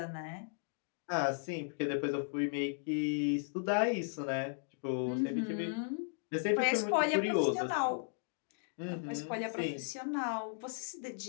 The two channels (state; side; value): silent; right; digital silence